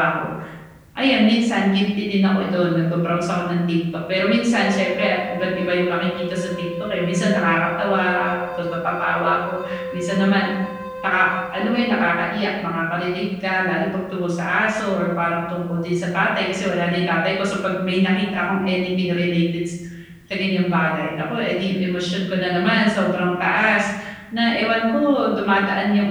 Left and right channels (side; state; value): both; identical; correlation 1.00